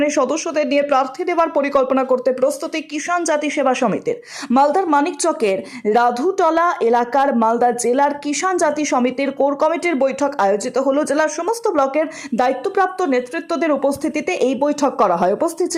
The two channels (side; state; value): both; identical; correlation 1.00